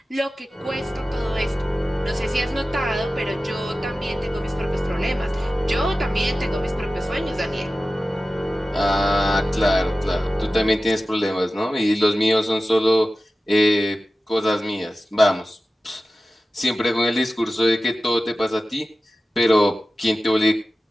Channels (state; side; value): normal; both; correlation 0.95